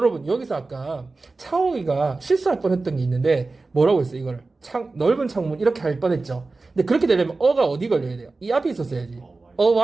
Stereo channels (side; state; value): left; quieter; 3.6 dB